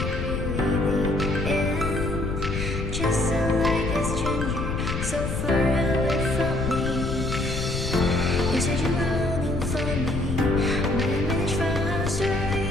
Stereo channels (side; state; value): left; noise; rumble, 3 dB below the sound